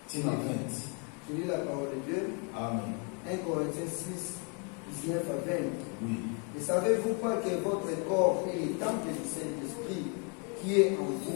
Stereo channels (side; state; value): right; quieter; 36.2 dB